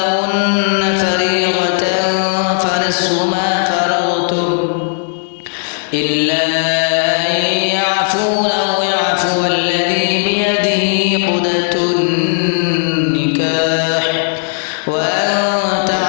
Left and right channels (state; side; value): silent; right; digital silence